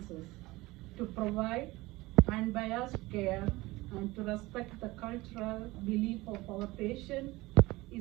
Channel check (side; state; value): left; quieter; 20.4 dB